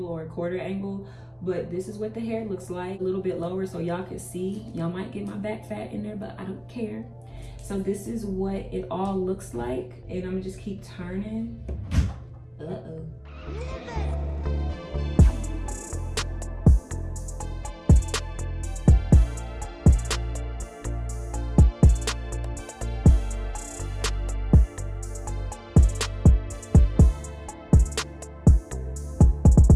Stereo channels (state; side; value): identical; both; correlation 1.00